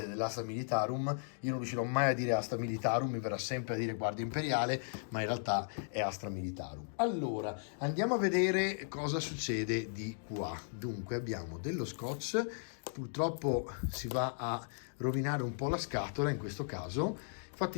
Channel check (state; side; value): silent; right; digital silence